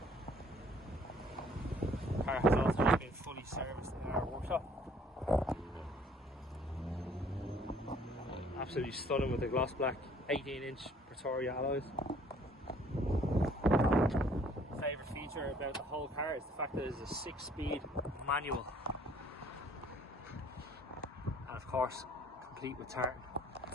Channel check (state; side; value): normal; both; correlation 0.58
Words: The car has also just been fully serviced in our workshop. Absolutely stunning with the gloss black 18-inch Pretoria alloys. Favourite feature about the whole car is the fact that it is a 6-speed manual, and of course complete with tartan.